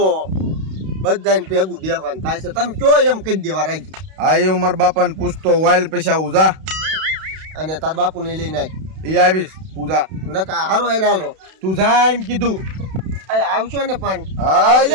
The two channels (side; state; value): left; late; 32 ms